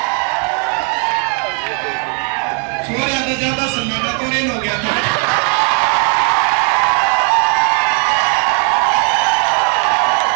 छोड़ ज्यादा सन्नाटा तो रेन हो गया था।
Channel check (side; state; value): left; quieter; 34.8 dB